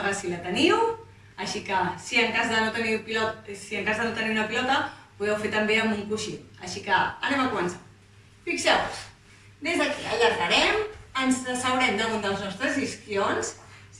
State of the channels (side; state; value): both; identical; correlation 1.00